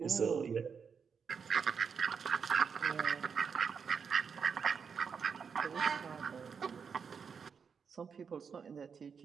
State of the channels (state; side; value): quieter; left; 6.3 dB